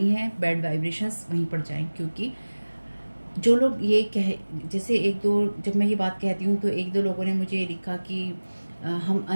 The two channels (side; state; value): both; inverted; correlation -1.00